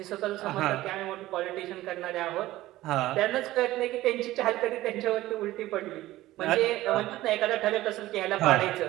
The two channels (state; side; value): quieter; left; 16.2 dB